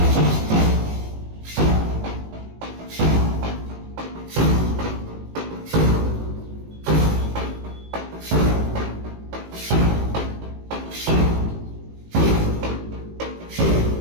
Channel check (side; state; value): left; late; 18 ms